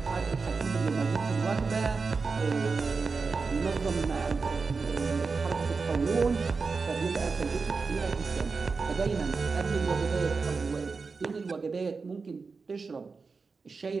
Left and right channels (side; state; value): left; quieter; 4.6 dB